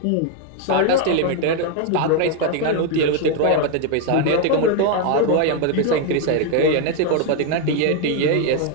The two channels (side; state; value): both; different; correlation 0.01